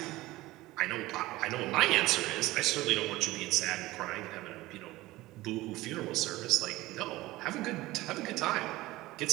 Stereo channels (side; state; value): left; quieter; 18.4 dB